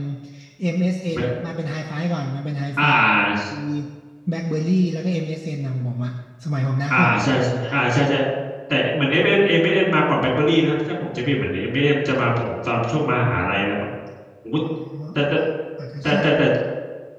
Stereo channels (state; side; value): identical; both; correlation 1.00